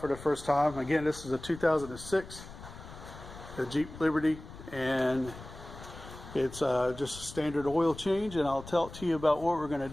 for the first time. Again, this is a 2006 the Jeep Liberty, and it's just a standard oil change, and I'll talk to you about what we're going to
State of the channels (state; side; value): noise; left; rumble, 15 dB below the sound